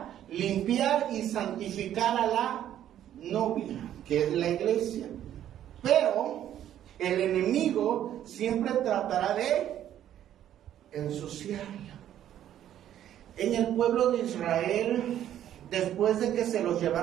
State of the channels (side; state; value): left; quieter; 11.2 dB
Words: limpiar y santificar a la novia, que es la iglesia. Pero el enemigo siempre tratará de ensuciarla. En el pueblo de Israel, después de que se los